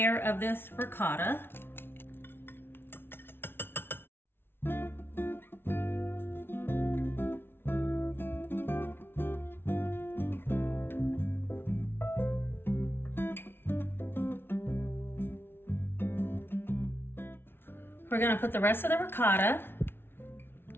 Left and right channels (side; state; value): right; late; 0.11 ms